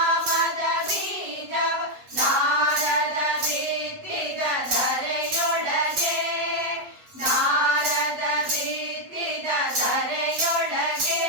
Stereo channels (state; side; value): late; left; 8.2 ms